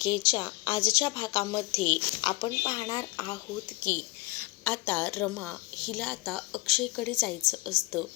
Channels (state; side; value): quieter; right; 21.9 dB